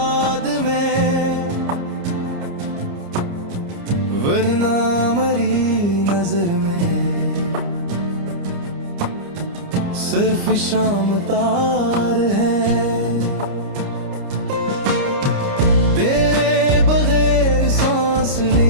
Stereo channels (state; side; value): late; left; 29 ms